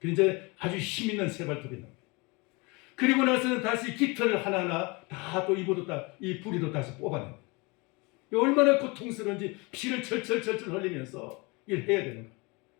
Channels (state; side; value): quieter; right; 27.3 dB